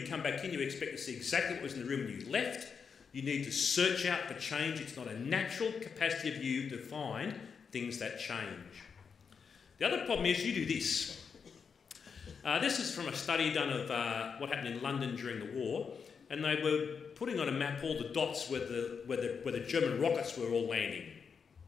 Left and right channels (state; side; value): quieter; right; 6.1 dB